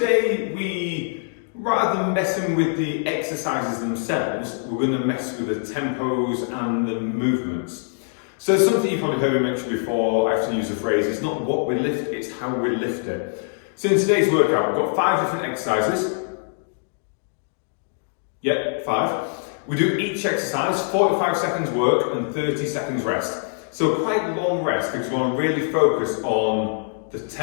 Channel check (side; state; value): right; silent; digital silence